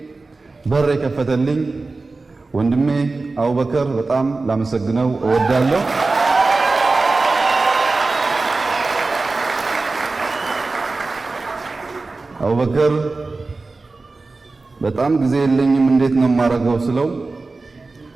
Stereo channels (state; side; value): quieter; left; 3.6 dB